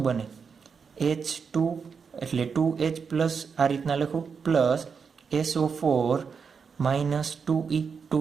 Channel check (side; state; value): left; quieter; 5.9 dB